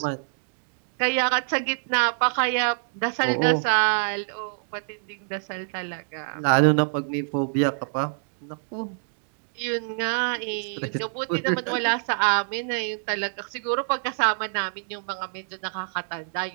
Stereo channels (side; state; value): left; silent; digital silence